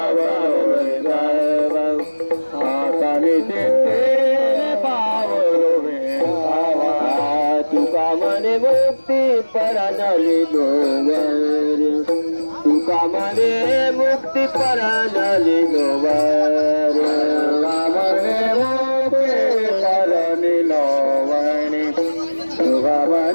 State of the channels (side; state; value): both; inverted; correlation -1.00